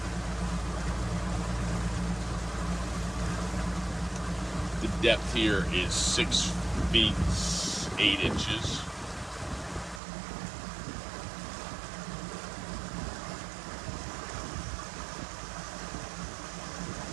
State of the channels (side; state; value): left; drops out; at 10.0 s